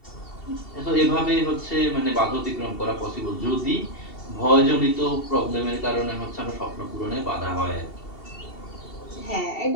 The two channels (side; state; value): right; late; 2.7 ms